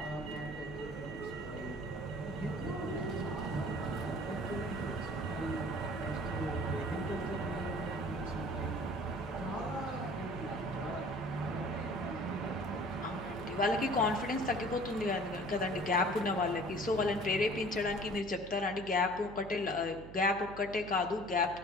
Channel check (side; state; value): right; noise; hum, 13 dB below the sound